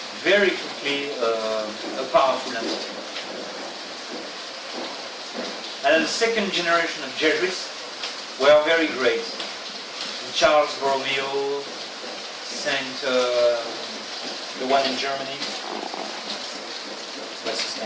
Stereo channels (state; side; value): identical; both; correlation 1.00